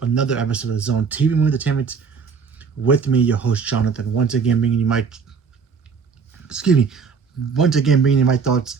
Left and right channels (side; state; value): left; quieter; 5.7 dB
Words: another episode of Zone TV Movie Entertainment with me, your host Jonathan. Excuse me, once again bringing you my thoughts